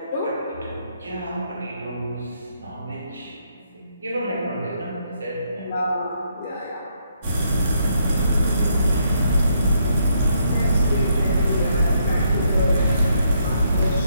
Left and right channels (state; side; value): inverted; both; correlation -0.74